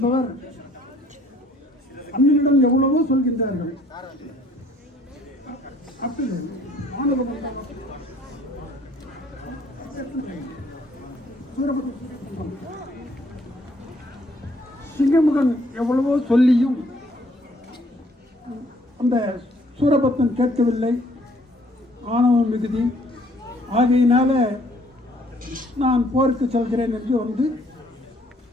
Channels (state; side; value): normal; both; correlation 0.62